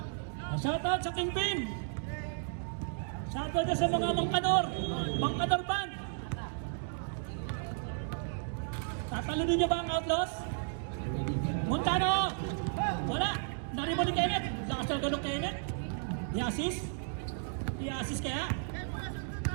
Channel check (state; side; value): silent; left; digital silence